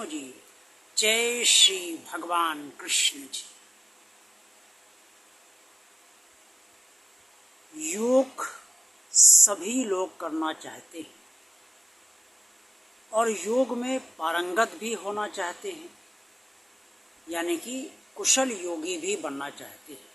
जी, जय श्री भगवान कृष्ण जी। योग सभी लोग करना चाहते हैं और योग में पारंगत भी होना चाहते हैं, यानी कि कुशल योगी भी बनना चाहते हैं।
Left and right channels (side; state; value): both; normal; correlation 0.96